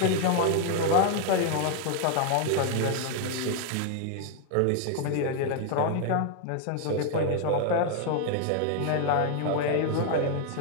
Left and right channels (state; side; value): different; both; correlation 0.00